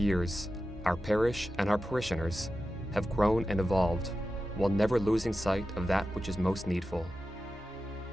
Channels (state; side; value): normal; both; correlation 0.92